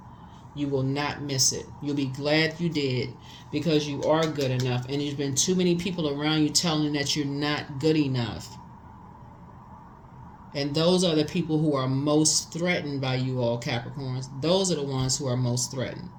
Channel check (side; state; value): both; identical; correlation 1.00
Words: You will not miss it. You'll be glad you did, because you are good enough. And there's been too many people around you telling you that you're not good enough. And those are the people who are most threatened by you all, Capricorns. Those are the ones who are most threatened.